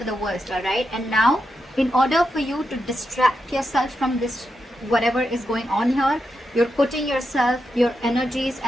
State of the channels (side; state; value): both; normal; correlation 0.86